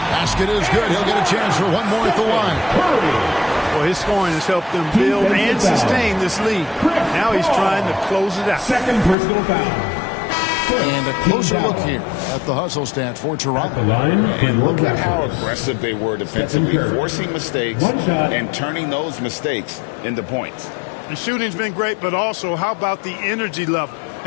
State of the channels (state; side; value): drops out; right; at 9.2 s